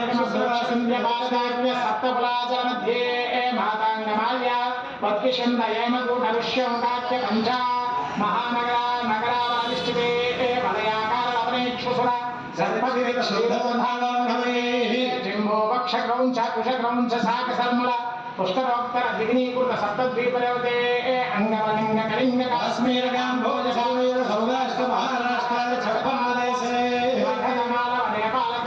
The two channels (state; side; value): identical; both; correlation 1.00